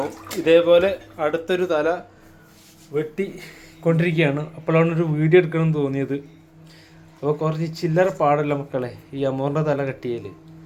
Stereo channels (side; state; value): both; identical; correlation 1.00